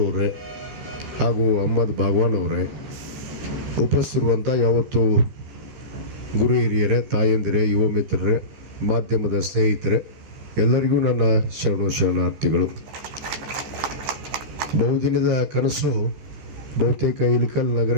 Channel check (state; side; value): late; left; 14 ms